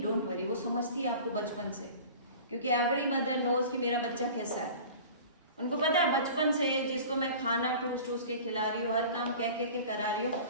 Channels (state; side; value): inverted; both; correlation -0.40